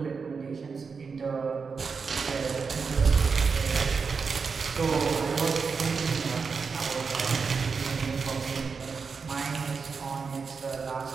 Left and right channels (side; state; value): left; quieter; 5.3 dB